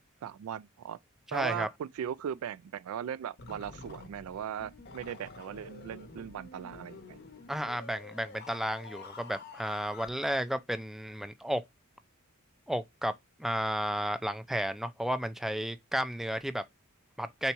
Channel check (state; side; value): normal; both; correlation 0.73